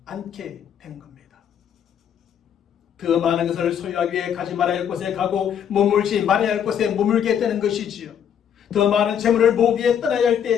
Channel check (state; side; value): quieter; right; 8.7 dB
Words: 않게 되는 겁니다. 더 많은 것을 소유하기 위해 가지 말아야 할 곳에 가고 머물지 말아야 할 곳에 머물게 되는 것이지요. 더 많은 재물을 모으기 위해 떠나야 할